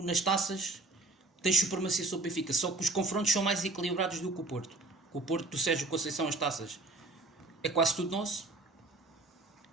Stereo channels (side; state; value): left; quieter; 3.2 dB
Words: nas taças tens supremacia sobre o Benfica, só que os confrontos são mais equilibrados do que o Porto. Com o Porto do Sérgio Conceição, as taças é quase tudo nosso.